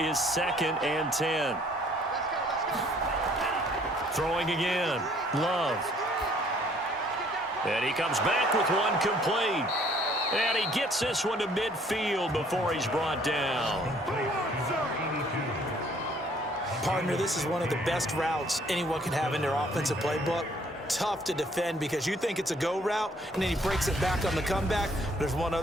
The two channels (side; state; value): both; normal; correlation 0.60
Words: 2nd and 10. Throwing again. Love. And he comes back with one complete. And he gets this one to midfield before he's brought down. Partner, this is one of the best routes anyone can have in their offensive playbook. Tough to defend because you think it's a go route, and then he breaks it back on the comeback. There's one